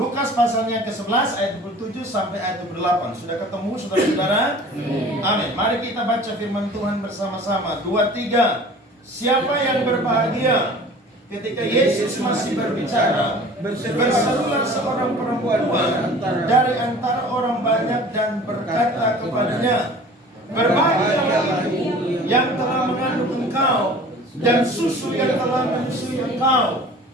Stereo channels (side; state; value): both; normal; correlation 0.44